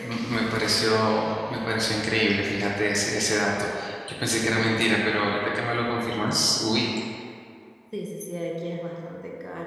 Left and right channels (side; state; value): both; identical; correlation 1.00